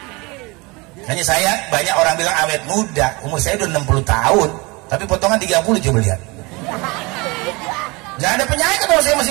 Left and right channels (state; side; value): quieter; left; 25.9 dB